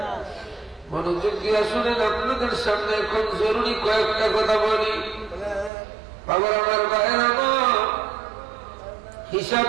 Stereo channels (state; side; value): drops out; left; at 5.7 s